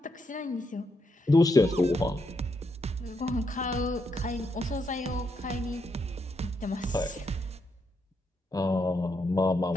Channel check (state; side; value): normal; both; correlation 0.79